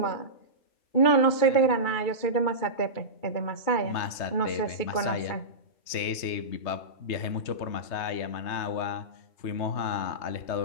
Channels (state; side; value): late; right; 3.3 ms